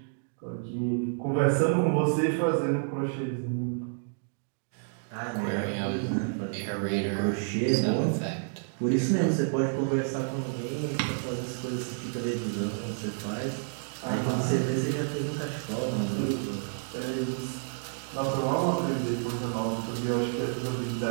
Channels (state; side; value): silent; left; digital silence